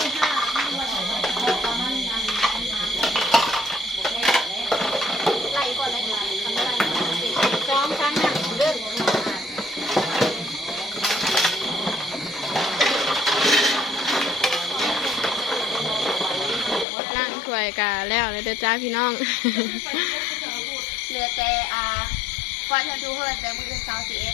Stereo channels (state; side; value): drops out; right; at 16.9 s